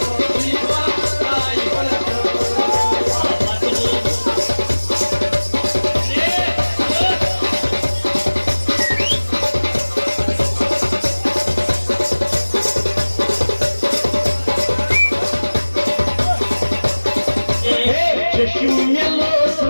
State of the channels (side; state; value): both; inverted; correlation -1.00